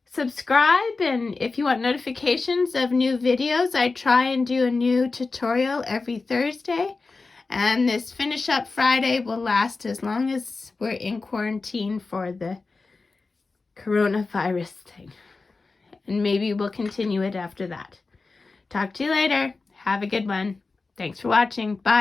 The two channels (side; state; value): right; quieter; 3.9 dB